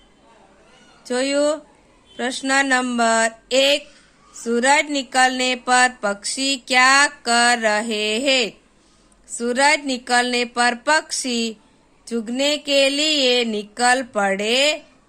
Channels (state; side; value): identical; both; correlation 1.00